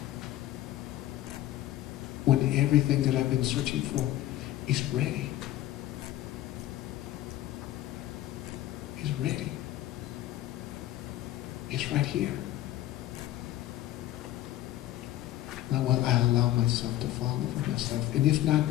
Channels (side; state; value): right; quieter; 14.1 dB